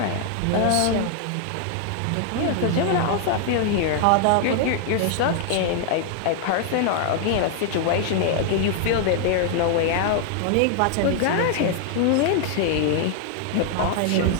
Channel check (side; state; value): both; different; correlation 0.00